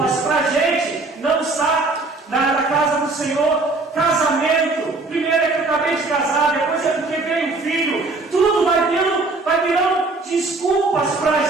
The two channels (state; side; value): quieter; left; 3.5 dB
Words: para a gente não estar na casa do Senhor. Casamento, primeiro é que eu acabei de casar, depois é porque veio um filho, tudo vai virando desculpas para a